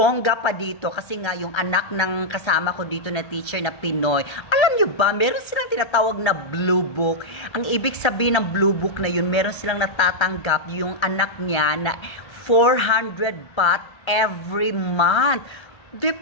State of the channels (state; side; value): late; right; 1.3 ms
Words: pa dito kasi nga yung anak ng kasama ko dito na teacher na Pinoy. Alam nyo ba, meron silang tinatawag na Blue Book. Ang ibig sabihin ng Blue Book na yun, meron silang natatanggap yung anak niya na 400 baht every month.